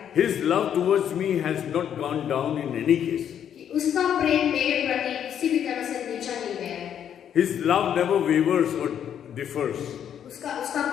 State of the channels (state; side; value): quieter; right; 9.2 dB